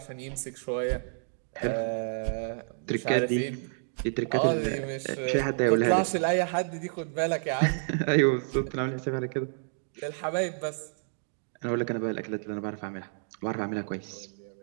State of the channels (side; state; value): left; silent; digital silence